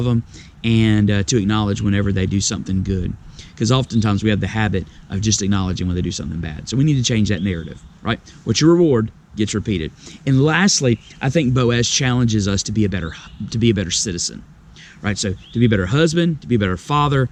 them, and to acknowledge whenever they do something good. Because oftentimes we have the habit of just acknowledging when they do something bad. So we need to change that narrative, right? What you reward gets repeated. And lastly, I think Boaz challenges us to be a better citizen, right? So to be a better husband, to be a better father,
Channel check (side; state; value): both; identical; correlation 1.00